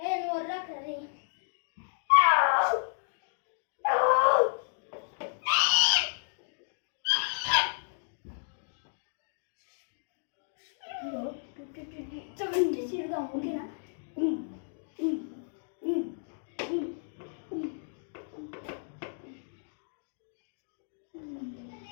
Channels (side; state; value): right; silent; digital silence